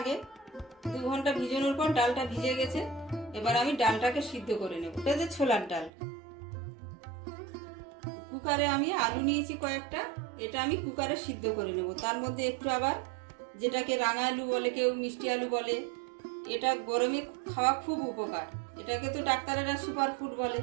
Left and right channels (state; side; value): drops out; left; at 5.9 s